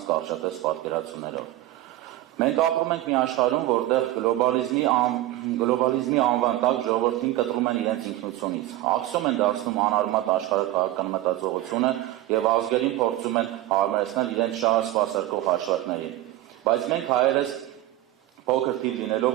կարճատես պատկերացումներով։ Մենք ապրում ենք մի աշխարհում, որտեղ գլոբալիզմի անվան տակ ժողովրդին կտրում են իրենց ինքնությունից, ակսում են դարձնում անարմատ աշխարհաքաղաքական մտածողությունը եւ ազգերին փորձում են հարմարեցնել իրենց շահը սպասարկող հաշվարկներին։ Բայց մենք հայերս փոքր թիվ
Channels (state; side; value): quieter; left; 15.2 dB